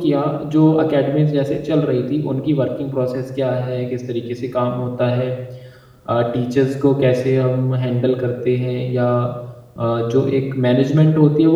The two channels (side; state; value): both; identical; correlation 1.00